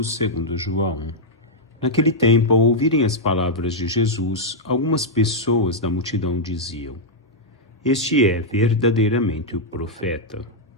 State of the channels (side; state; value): both; normal; correlation -0.05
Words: segundo João. Naquele tempo, ao ouvirem as palavras de Jesus, algumas pessoas da multidão diziam: "Este é verdadeiramente o profeta."